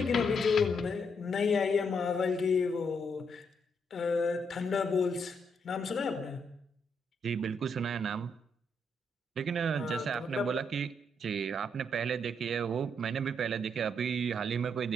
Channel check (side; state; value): both; normal; correlation 0.76